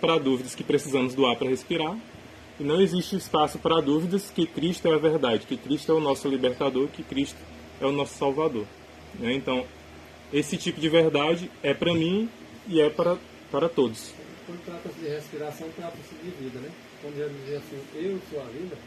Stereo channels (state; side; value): identical; both; correlation 1.00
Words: dúvidas que precisamos do ar para respirar, e não existe espaço para dúvidas que Cristo é a verdade, que Cristo é o nosso libertador, que Cristo é o nosso salvador. Né? Então, esse tipo de verdade é para mim e é para todos. Quando trata-se de respiração, trata-se de vida, né? Quando Jesus diz assim, eu sou a vida,